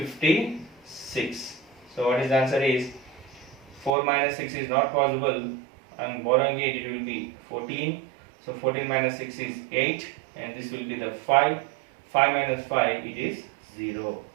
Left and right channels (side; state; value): left; drops out; at 3.9 s